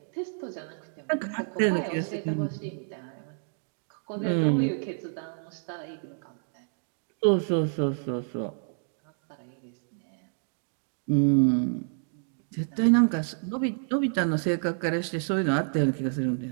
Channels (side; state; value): left; silent; digital silence